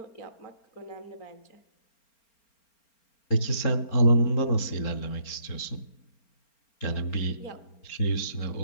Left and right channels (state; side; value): late; right; 4.4 ms